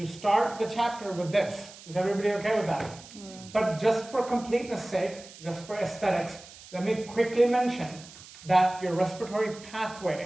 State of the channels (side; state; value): right; noise; hiss, 18 dB below the sound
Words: start the chapter with this. Is everybody okay with that? Yeah. But just for completeness sake, just for aesthetics, let me quickly mention that your respiratory